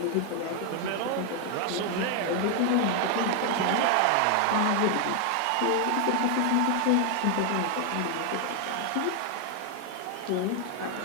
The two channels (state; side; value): different; both; correlation 0.00